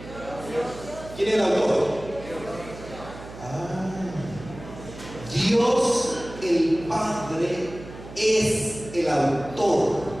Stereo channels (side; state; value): right; noise; hum, 15 dB below the sound